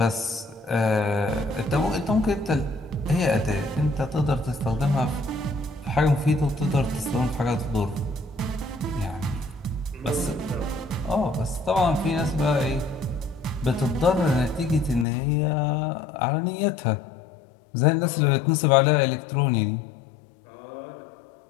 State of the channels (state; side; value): drops out; right; at 15.1 s